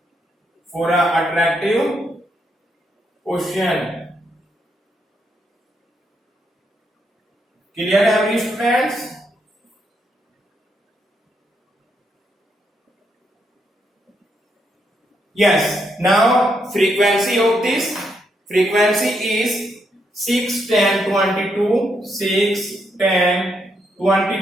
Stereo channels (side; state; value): both; normal; correlation 0.78